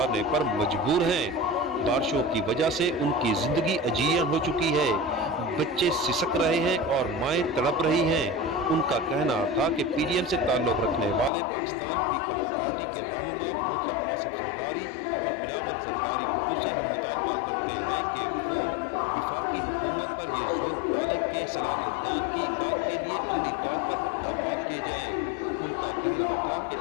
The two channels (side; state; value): right; drops out; at 11.3 s